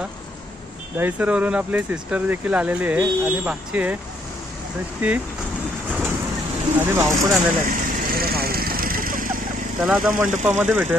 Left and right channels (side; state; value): both; normal; correlation 0.70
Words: दहीसरवरून आपली सिस्टर देखील आलेली आहे आणि भाची आहे ती आणि भाऊ पण आलेला आहे भाऊ. चला आता मंडपामध्ये